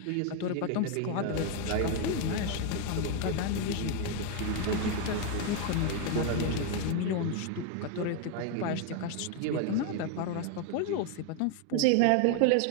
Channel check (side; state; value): both; different; correlation 0.01